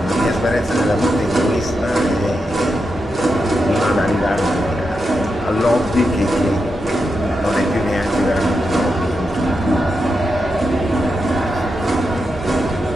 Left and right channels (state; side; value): normal; both; correlation 0.87